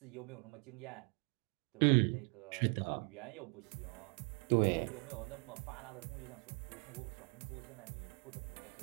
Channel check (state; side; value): quieter; left; 36.1 dB